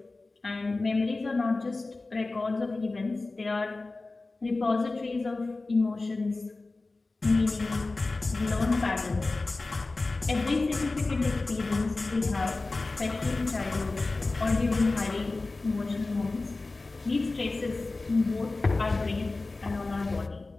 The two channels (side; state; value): right; quieter; 3.4 dB